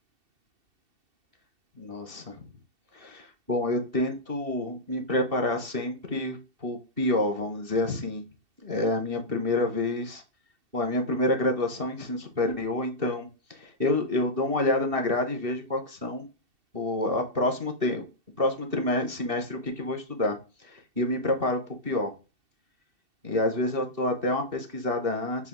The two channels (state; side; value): late; left; 2.7 ms